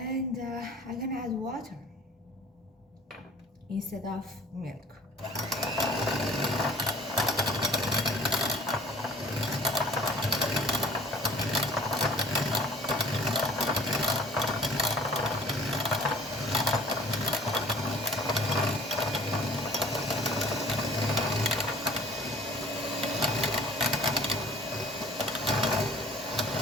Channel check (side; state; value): both; normal; correlation 0.50